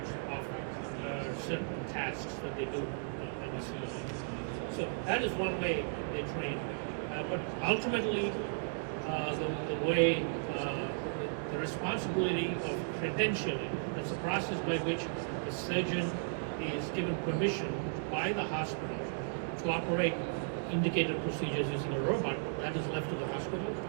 of certain tasks that they do in the simulator. So that is one way they train. But ultimately, the way, the responsibility of credentialing, that's a process by which a surgeon is given permission by the hospital to operate indicated procedures using a robot, that is left to the hospital.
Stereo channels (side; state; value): left; silent; digital silence